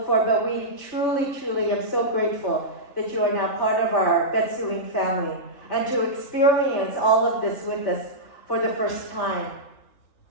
forward, but we truly, truly am so grateful that you are now part of our Betsuin family and to experience all of this with us for the first time.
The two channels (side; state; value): right; late; 3.4 ms